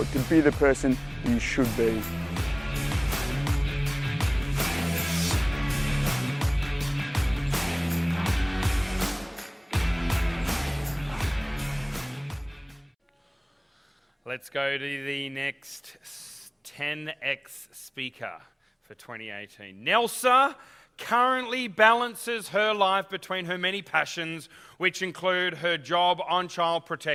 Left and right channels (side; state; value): both; identical; correlation 1.00